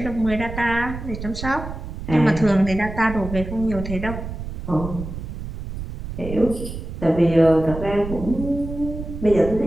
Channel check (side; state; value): right; noise; rumble, 8 dB below the sound